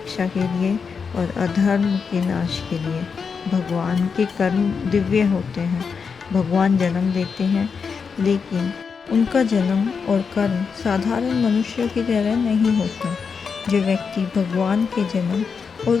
के लिए और अधर्म के नाश के लिए। भगवान के कर्म दिव्य होते हैं। भगवान जन्म देते हैं, लेकिन उनका जन्म और कर्म साधारण मनुष्यों की तरह नहीं होता। जो व्यक्ति भगवान के जन्म और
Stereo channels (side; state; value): right; quieter; 5.7 dB